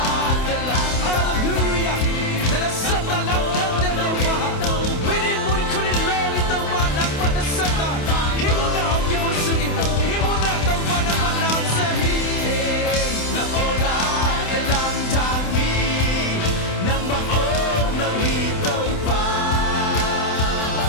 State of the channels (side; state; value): right; late; 28 ms